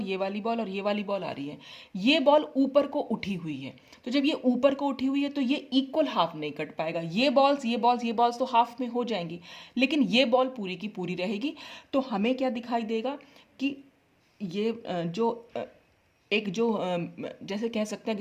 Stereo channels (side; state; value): both; identical; correlation 1.00